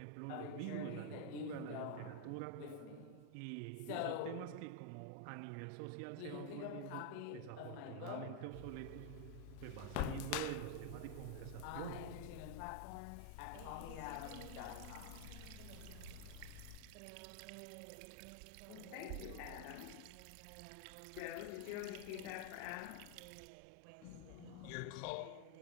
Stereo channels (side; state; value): both; different; correlation 0.00